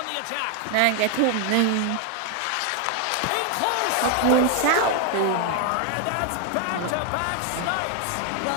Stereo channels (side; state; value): both; different; correlation 0.01